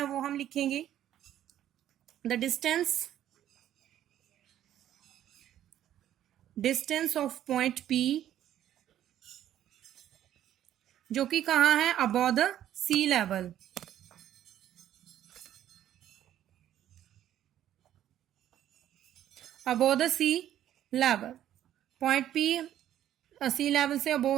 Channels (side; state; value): left; quieter; 11.6 dB